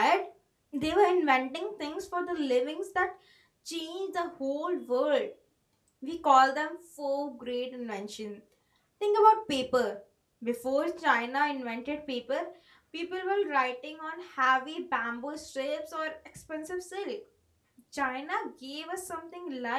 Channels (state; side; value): identical; both; correlation 1.00